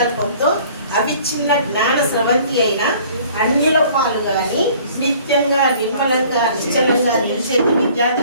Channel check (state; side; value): inverted; both; correlation -0.53